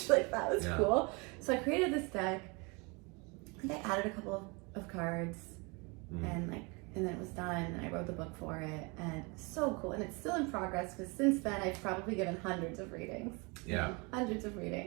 Like, that was cool. So I created this deck, and I added a couple of cards, and then it was done, and I wrote the book for it, and so cool. And it's still in progress, because since then I've probably given hundreds of readings. Yeah. Hundreds of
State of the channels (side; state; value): left; quieter; 29.4 dB